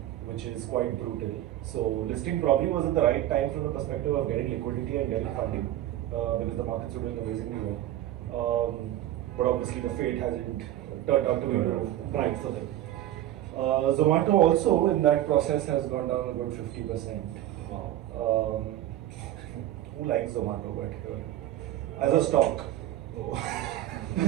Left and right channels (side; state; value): left; quieter; 13.4 dB